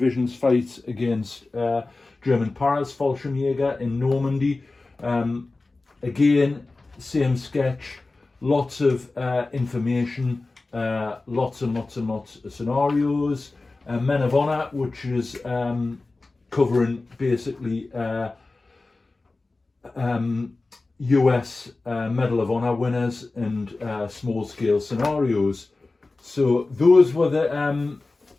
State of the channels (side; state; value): right; quieter; 3.4 dB